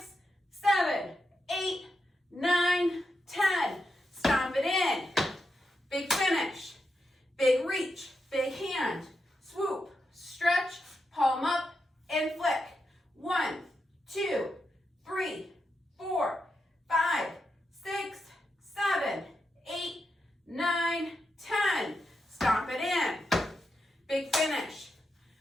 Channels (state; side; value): normal; both; correlation 0.86